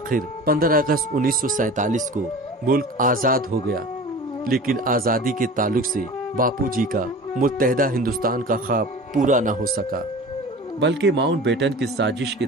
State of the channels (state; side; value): normal; both; correlation 0.38